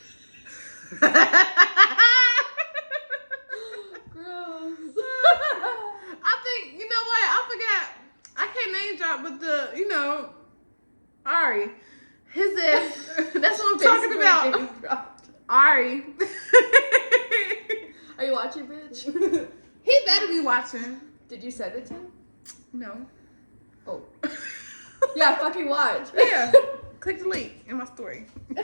Gross. I think, you know what? I forgot. I can't name drop, but Ari. His ass. That's what I'm talking about. Ari. Are you watching, bitch? He better be watching. Did you send it to him? No. Oh. Yeah, fucking watch. Yeah. Click the link in my story.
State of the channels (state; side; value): inverted; both; correlation -1.00